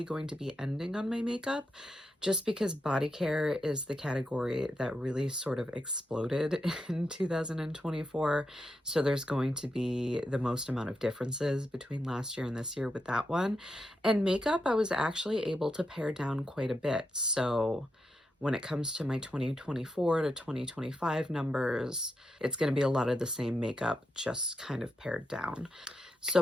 going to be ending on my makeup just because Bodycare is the category that really sort of exploded in 2024. So there's going to be the most amount of differences between last year and this year with that one. And makeup, I was actually able to pare down quite a bit. So when it comes to my 2024 to 2025 numbers, it's going to be a lot of the same makeup, just kind of pared down. So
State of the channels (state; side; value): normal; both; correlation 0.85